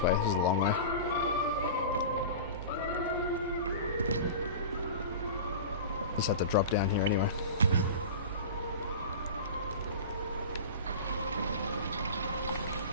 way. This is a long way. Just have to drop down here anyway.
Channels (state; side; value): inverted; both; correlation -0.32